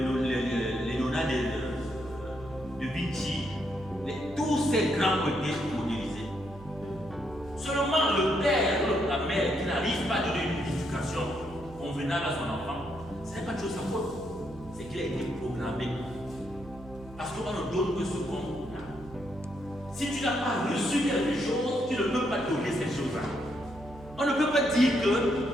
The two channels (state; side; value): noise; right; hum, 17 dB below the sound